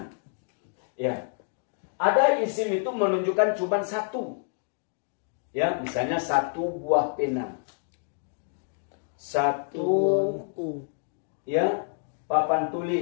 Ya. Ada isim itu menunjukkan cuma 1. Ya, misalnya 1 buah pena. Satu, buku. ya, papan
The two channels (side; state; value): right; silent; digital silence